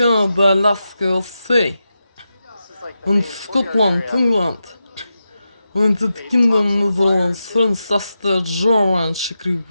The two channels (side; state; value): both; inverted; correlation -0.89